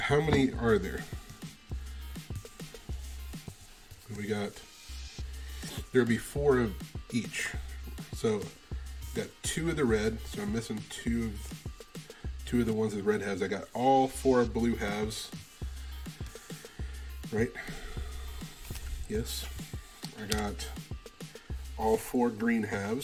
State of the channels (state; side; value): identical; both; correlation 1.00